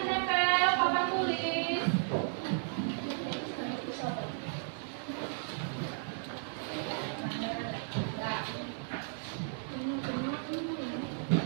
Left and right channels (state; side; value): silent; left; 55 dB below the other